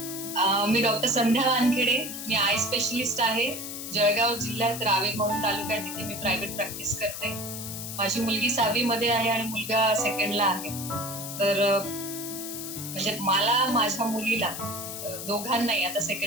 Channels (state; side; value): noise; left; hiss, 8 dB below the sound